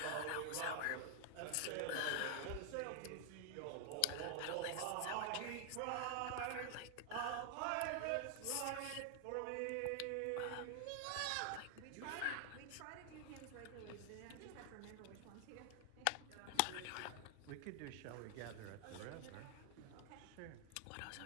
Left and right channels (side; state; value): both; different; correlation 0.00